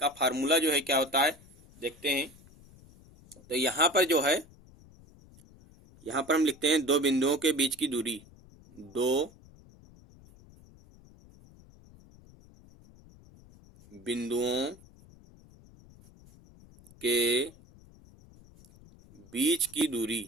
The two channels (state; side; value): noise; left; rumble, 24 dB below the sound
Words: फार्मूला जो है क्या होता है देखते हैं। तो यहाँ पर जो है यहाँ पर हम लिखते हैं दो बिंदुओं के बीच की दूरी, दो बिंदुओं के बीच की